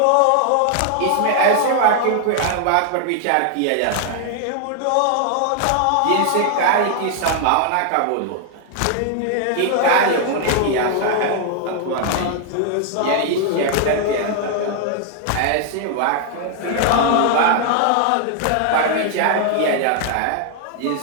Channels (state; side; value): different; both; correlation 0.00